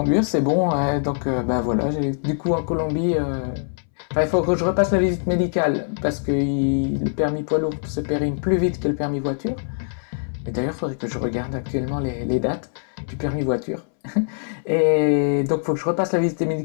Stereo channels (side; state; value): right; silent; 64 dB below the other